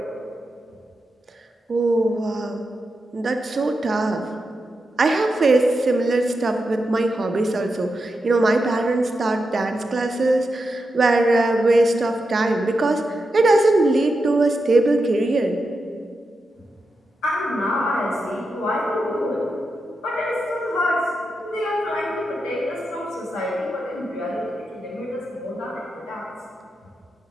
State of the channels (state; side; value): normal; both; correlation 0.88